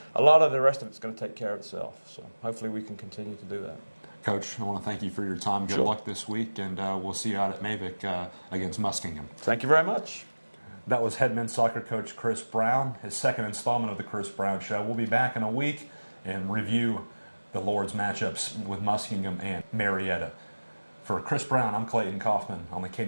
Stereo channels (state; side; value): inverted; both; correlation -1.00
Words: a lot of the rest of it's going to take care of itself. So hopefully we can continue to do that. Coach, I want to thank you for your time. Good luck this week, and we'll see you out at Mavic against Muskingum. Thank you very much. That was head men's soccer coach Chris Brown, his second installment of the Chris Brown Show. We'll be back in a week and review the Lord's matchups with Muskingum and Marietta. For Chris Brown, I'm Clayton Kaufman on the